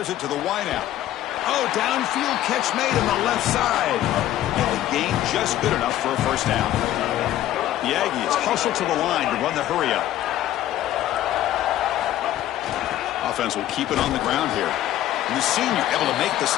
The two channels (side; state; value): right; quieter; 13.2 dB